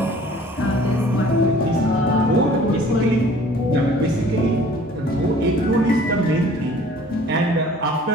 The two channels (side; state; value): both; normal; correlation 0.51